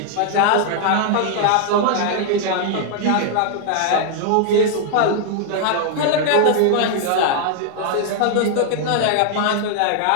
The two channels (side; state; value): both; different; correlation 0.00